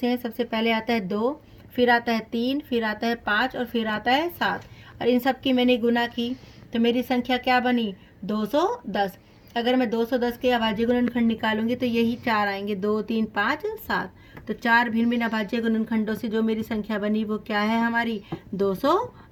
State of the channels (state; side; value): identical; both; correlation 1.00